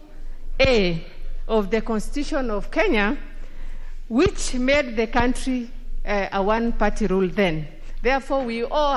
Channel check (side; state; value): both; identical; correlation 1.00